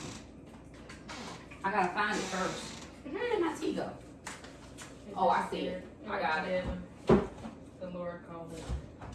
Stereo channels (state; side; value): identical; both; correlation 1.00